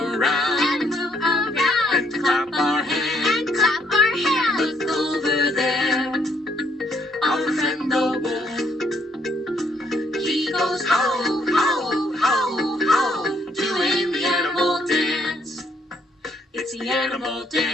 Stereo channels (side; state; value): both; normal; correlation 0.69